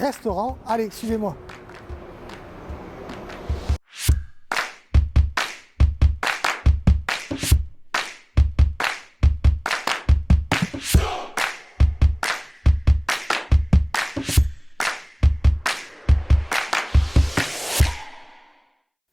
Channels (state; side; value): identical; both; correlation 1.00